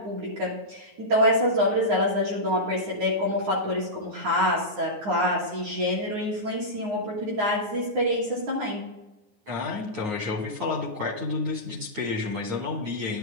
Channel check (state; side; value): late; left; 9.6 ms